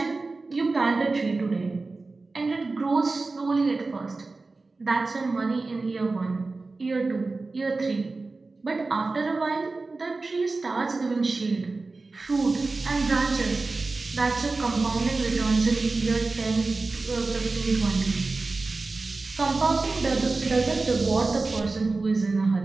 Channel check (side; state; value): left; quieter; 3.6 dB